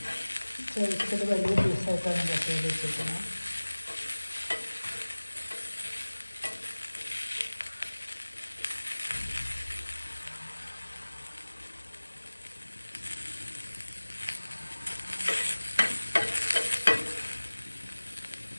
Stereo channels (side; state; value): both; inverted; correlation -1.00